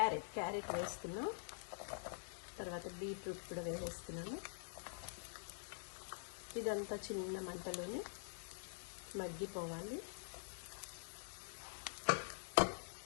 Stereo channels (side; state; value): right; silent; digital silence